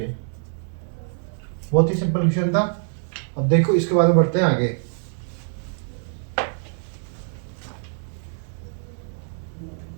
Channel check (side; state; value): left; silent; digital silence